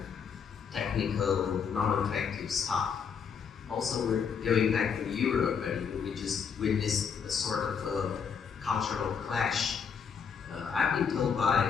technical, non-attractive stuff. Also, we're going back to Europe, and we just witnessed a sort of a cultural clash. I've been told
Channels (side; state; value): right; quieter; 6.7 dB